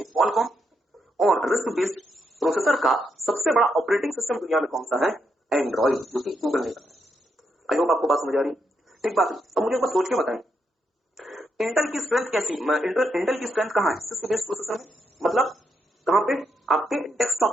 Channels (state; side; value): normal; both; correlation 0.80